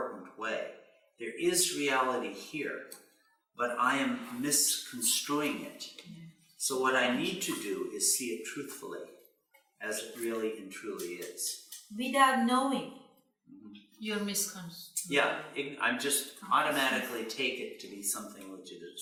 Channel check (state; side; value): identical; both; correlation 1.00